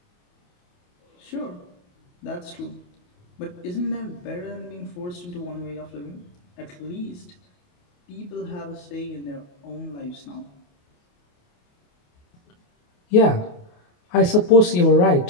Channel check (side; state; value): right; late; 28 ms